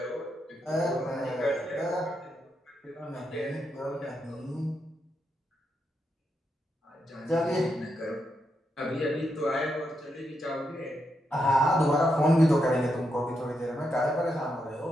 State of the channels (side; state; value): both; normal; correlation 0.82